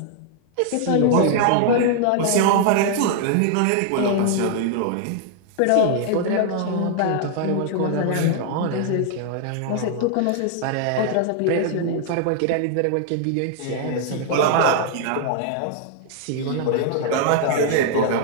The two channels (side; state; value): both; different; correlation 0.00